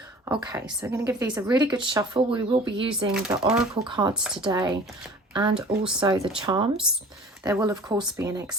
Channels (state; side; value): normal; both; correlation 0.45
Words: Okay, so I'm going to give these a really good shuffle. We will be using the oracle cards today and also the charms. There will, of course, be an